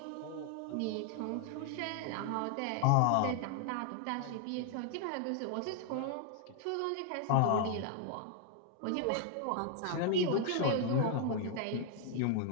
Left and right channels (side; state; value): both; different; correlation 0.00